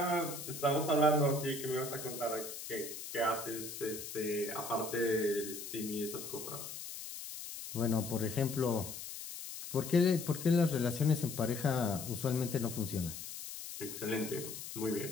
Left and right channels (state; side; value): noise; left; hiss, 9 dB below the sound